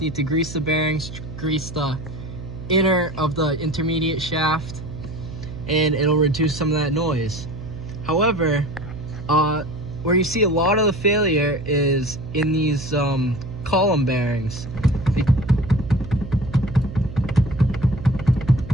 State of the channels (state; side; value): noise; right; hum, 11 dB below the sound